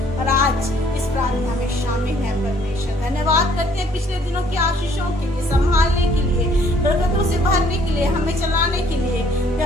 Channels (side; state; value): both; normal; correlation 0.61